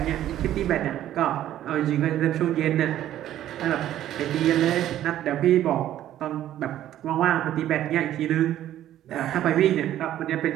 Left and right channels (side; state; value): left; quieter; 12.3 dB